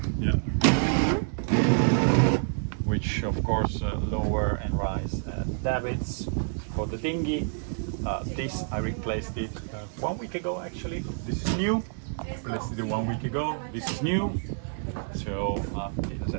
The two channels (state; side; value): silent; left; digital silence